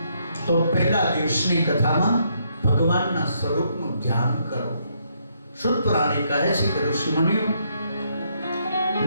તો પહેલા દિવસની કથામાં ભગવાનના સ્વરૂપનું ધ્યાન કરો. શુદ્ધ પુરાણી કહે છે કે ઋષિમુનિઓ,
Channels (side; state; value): both; inverted; correlation -0.74